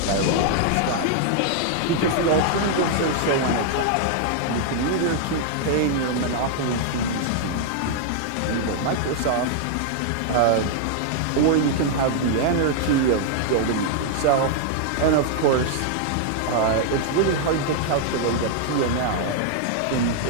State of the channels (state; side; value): different; both; correlation 0.00